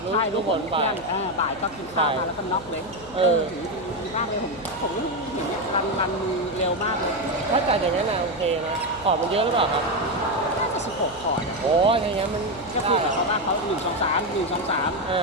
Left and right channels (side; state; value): left; noise; hum, 19 dB below the sound